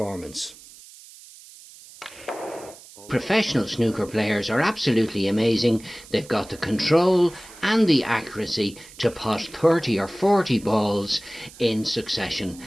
Professional snooker players are absolutely amazing. They've got the control and the accuracy to pot 30 or 40 balls in succession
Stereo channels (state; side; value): noise; right; hiss, 20 dB below the sound